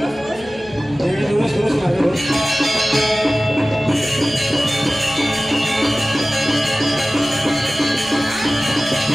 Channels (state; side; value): noise; right; hum, 24 dB below the sound